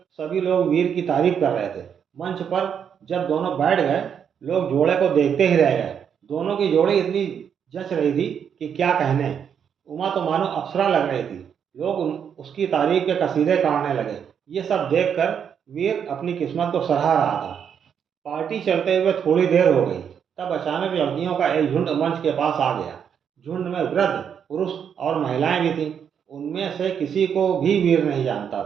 सभी लोग वीर की तारीफ कर रहे थे। मंच पर जब दोनों बैठ गए, लोग जोड़े को देखते ही रह गए। दोनों की जोड़ी इतनी जच रही थी कि क्या कहने। उमा तो मानो अप्सरा लग रही थी। लोग उसकी तारीफ के कसीदे काटने लगे। ये सब देखकर वीर अपनी किस्मत को सराह रहा था। पार्टी चलते हुए थोड़ी देर हो गई, तब अचानक लड़कियों का एक झुंड मंच के पास आ गया। झुंड में वृद्ध पुरुष और महिलाएं भी थीं। उनमें से किसी को भी वीर नहीं जानता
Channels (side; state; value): left; quieter; 7.8 dB